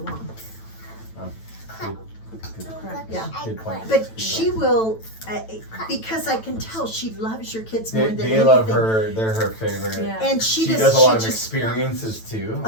Yeah. Good point. But she will, because I can tell she loves your kids more They, than they anything. love her. They're her favorite. yeah. And She she does a lot of just, experiences too.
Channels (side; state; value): right; late; 9.0 ms